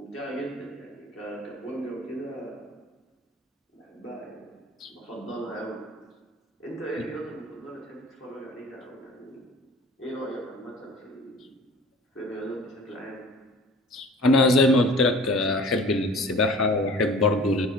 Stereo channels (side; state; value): both; normal; correlation 0.45